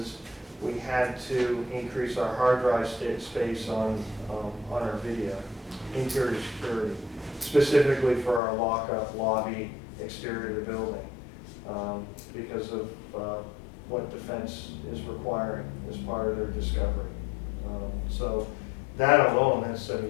we had to increase our hard drive space on our video, interior security, specifically for our lockup lobby exterior of the building, because of what defense is requiring as part of their discovery. So that alone has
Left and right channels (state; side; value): drops out; right; at 8.4 s